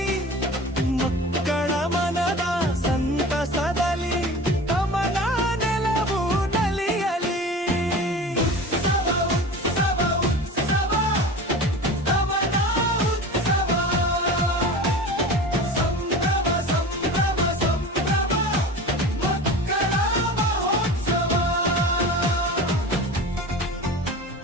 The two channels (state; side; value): normal; both; correlation 0.35